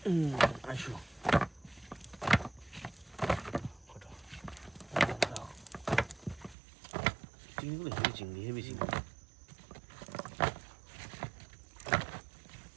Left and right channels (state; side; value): drops out; left; at 6.6 s